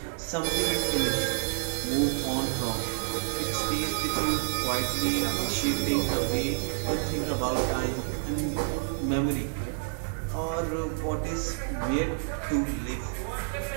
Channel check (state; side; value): silent; left; digital silence